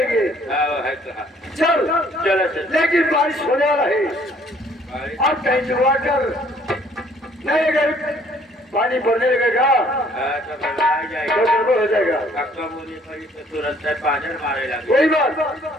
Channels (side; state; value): both; normal; correlation 0.60